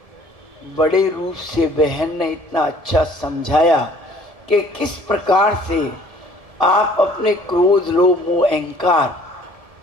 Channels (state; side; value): late; left; 1.7 ms